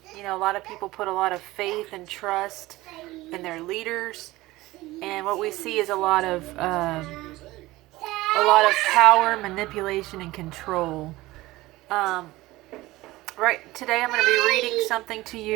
You know, a lot of people put a lot of faith and trust in their leaders, and what we see is a lot of power, manipulation, and control. Um, right today, I'm going to be reading something to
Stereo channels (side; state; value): left; quieter; 18.7 dB